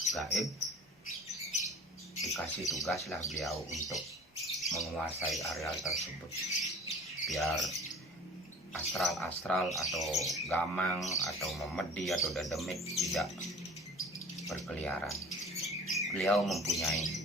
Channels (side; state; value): both; normal; correlation 0.43